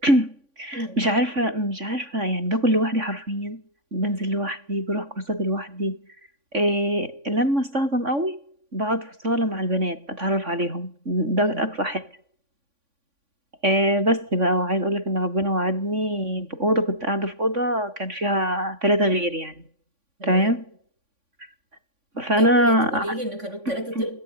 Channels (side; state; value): left; late; 3.5 ms